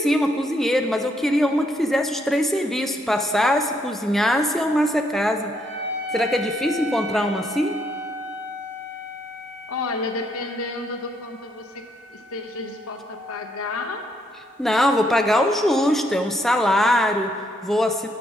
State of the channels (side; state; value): both; normal; correlation 0.73